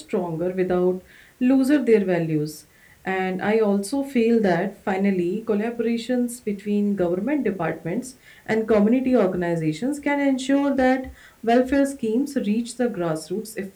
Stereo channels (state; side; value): identical; both; correlation 1.00